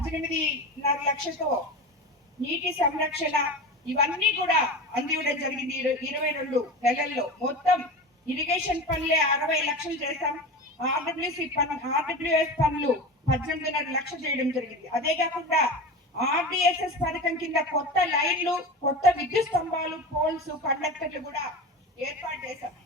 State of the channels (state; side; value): normal; both; correlation 0.28